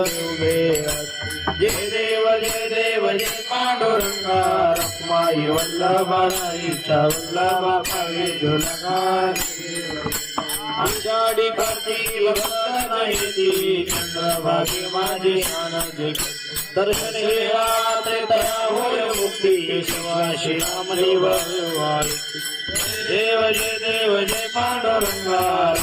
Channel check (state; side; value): identical; both; correlation 1.00